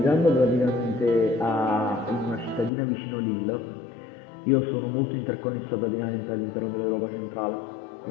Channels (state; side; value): drops out; right; at 2.7 s